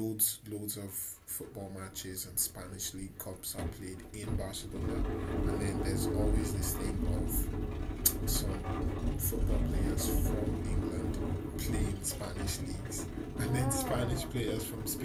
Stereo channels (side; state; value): both; identical; correlation 1.00